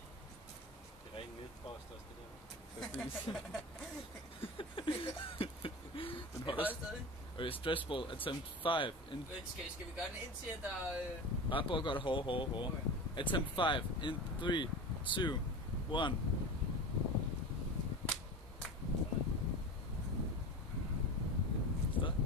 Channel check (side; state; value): both; normal; correlation 0.29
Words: Det er rent netpost også, det der. Præcis. Den Han holder. holder stadig. Okay, stress ball, attempt 5, in... Skal vi gøre den indtil, at der... Bare prøv at gøre det hårdere. Okay. Attempt 5, in 3, 2, 1. Stop.